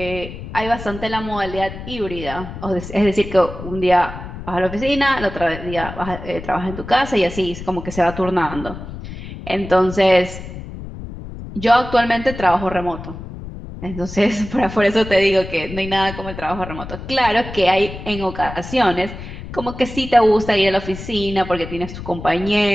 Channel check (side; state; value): left; noise; rumble, 11 dB below the sound